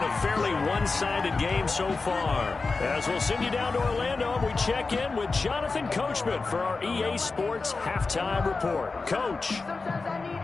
a fairly one-sided game so far. As we'll send you down to Orlando, and we check in with Jonathan Coachman for our EA Sports Halftime Report. Coach.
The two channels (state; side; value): quieter; right; 4.0 dB